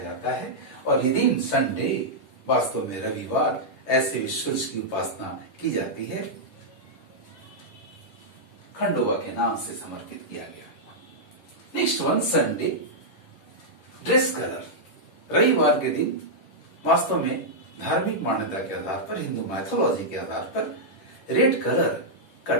है और ये दिन संडे, वास्तव में रविवार, ऐसे भी सूर्य की उपासना की जाती है, खंडोबा के नाम से समर्पित किया गया। Next one, Sunday dress colour. रविवार के दिन वास्तव में धार्मिक मान्यता के आधार पर, हिंदू मैथोलॉजी के आधार पर रेड कलर का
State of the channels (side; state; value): right; late; 10 ms